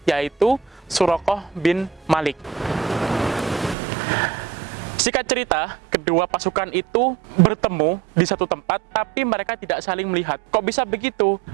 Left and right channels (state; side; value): drops out; left; at 3.8 s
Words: yaitu Suraqah bin Malik. Singkat cerita, kedua pasukan itu bertemu di satu tempat, tapi mereka tidak saling melihat. Kok bisa begitu?